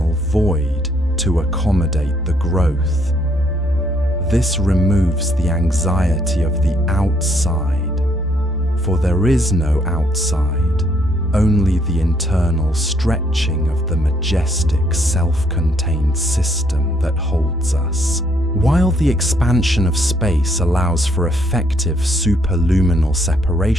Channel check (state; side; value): normal; both; correlation 0.69